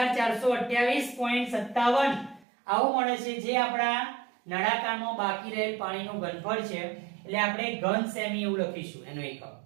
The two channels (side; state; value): left; drops out; at 2.5 s